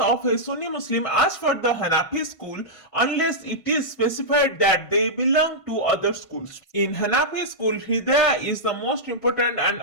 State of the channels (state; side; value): late; right; 1.5 ms